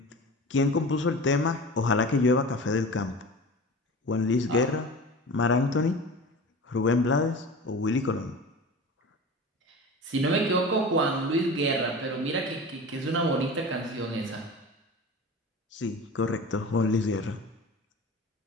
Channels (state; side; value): normal; both; correlation 0.34